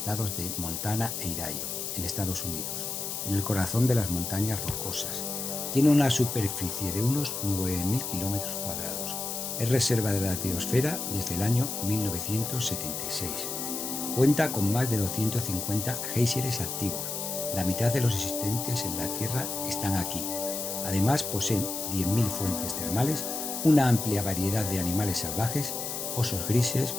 de Montana e Idaho, en Estados Unidos, en el corazón de las montañas rocosas. Tiene una superficie de unos 9.000 kilómetros cuadrados. Es reserva de la biosfera desde el año 1976. Cuenta con más de 250 géiseres activos. La mitad de los existentes en la Tierra están aquí. Además, poseen 10.000 fuentes termales, una amplia variedad de animales salvajes, osos grises,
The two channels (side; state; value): left; noise; hiss, 4 dB below the sound